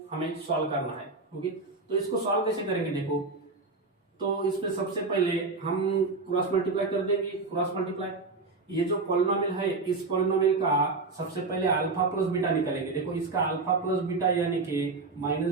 हमें सॉल्व करना है। ओके, तो इसको सॉल्व कैसे करेंगे। देखो, तो इसमें सबसे पहले हम क्रॉस मल्टीप्लाई कर देंगे। क्रॉस मल्टीप्लाई, ये जो पॉलिनोमियल है इस पॉलिनोमियल का सबसे पहले अल्फा प्लस बीटा निकालेंगे। देखो इसका अल्फा प्लस बीटा यानी कि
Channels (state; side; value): quieter; left; 3.8 dB